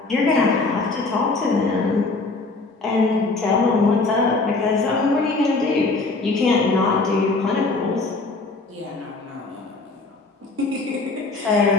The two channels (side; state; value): right; quieter; 3.6 dB